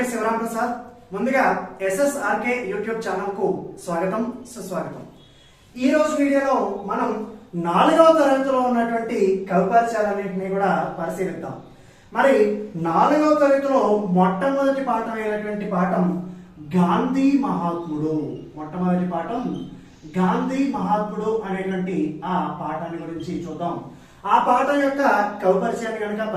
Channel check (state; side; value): identical; both; correlation 1.00